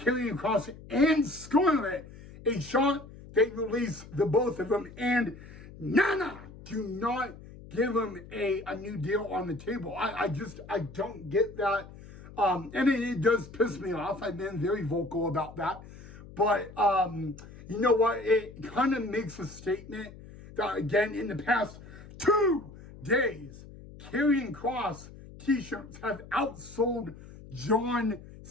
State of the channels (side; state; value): left; noise; hum, 17 dB below the sound